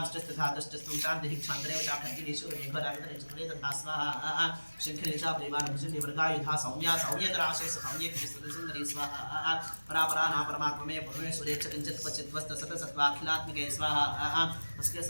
तष्टस्त्वं शान्तिः क्षान्तरेव चाखड्गिनीश्वरमेघरावितरे तथा स्वाहा शङ्खिनी च प्रेमानुभुजन्य वर्गायुधा सौम्या सौम्यतराशेष सौम्येकसुन्दरी स्वाहा परापराना परमात्ममे परमेश्वरे च किञ्चित् क्वचित् वस्तसतसत्त्वाखिलात्मिके स्वाहा अस्के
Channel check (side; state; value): both; inverted; correlation -1.00